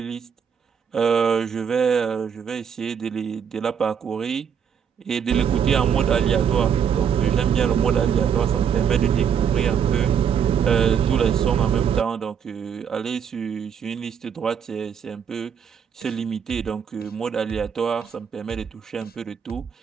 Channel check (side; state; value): left; quieter; 7.6 dB